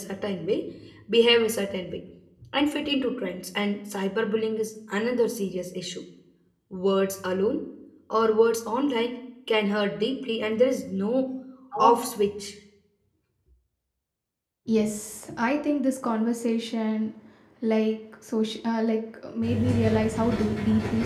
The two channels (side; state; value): both; identical; correlation 1.00